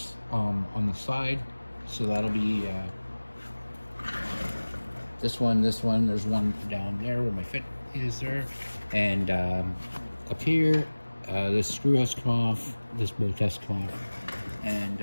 on the side. So that'll be this one, there's one down there where my fit is there, and up here, this screw has to come off, this bolt has to come off,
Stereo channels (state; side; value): inverted; both; correlation -1.00